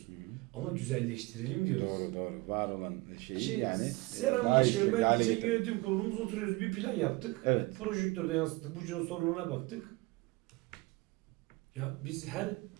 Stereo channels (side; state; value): left; quieter; 23.5 dB